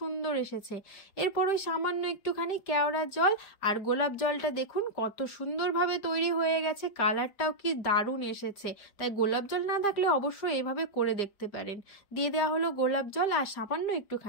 এসেছে। এরপর ওই সামান্য একটুখানি কেওড়া জল আর গোলাপ জলটা দেখুন কত সুন্দরভাবে তৈরি হয়ে গেছে, কালারটাও কি দারুণ এসেছে। তাই গোলাপ জল না থাকলে অবশ্যই এভাবে করে দেখতে পারেন। দিয়ে দেওয়া হলো গোলাপ জল আর সামান্য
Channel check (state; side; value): late; right; 5.0 ms